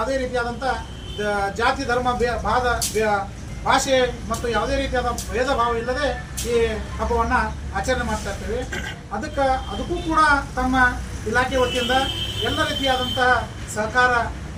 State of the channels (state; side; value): identical; both; correlation 1.00